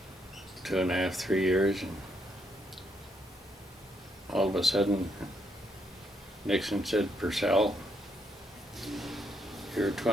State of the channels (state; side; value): normal; both; correlation 0.75